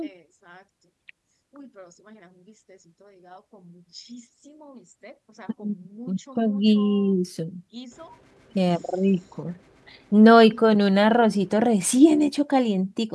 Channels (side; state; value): both; identical; correlation 1.00